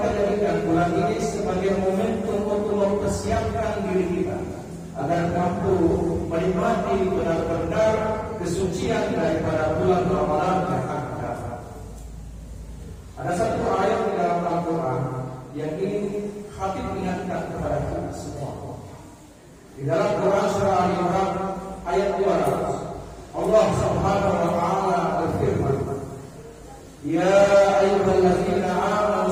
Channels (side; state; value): both; identical; correlation 1.00